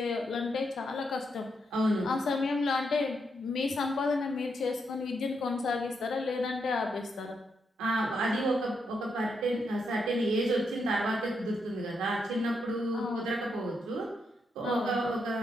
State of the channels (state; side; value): normal; both; correlation 0.80